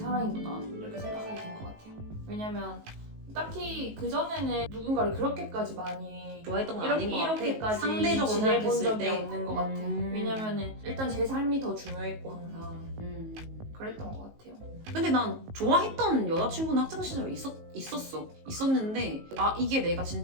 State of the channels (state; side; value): late; left; 19 ms